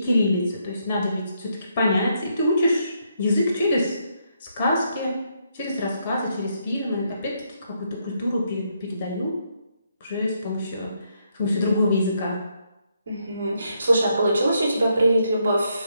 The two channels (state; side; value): inverted; both; correlation -0.76